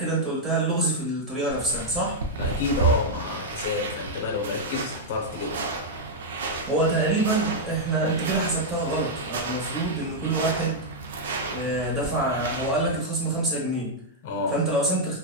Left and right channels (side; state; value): both; normal; correlation -0.04